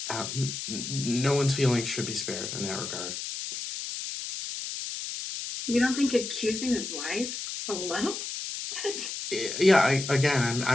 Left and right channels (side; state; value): left; noise; hiss, 6 dB below the sound